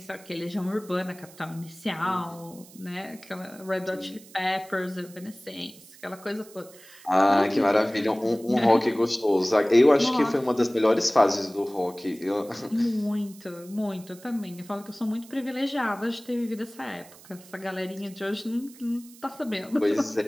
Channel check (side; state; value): right; noise; hiss, 22 dB below the sound